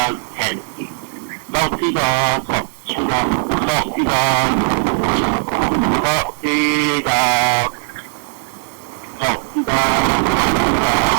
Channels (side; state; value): left; silent; digital silence